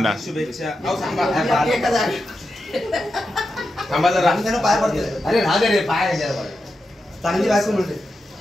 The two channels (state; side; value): normal; both; correlation 0.89